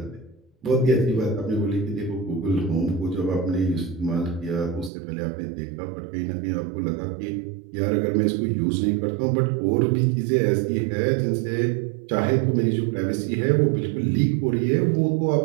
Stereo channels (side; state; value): left; drops out; at 4.9 s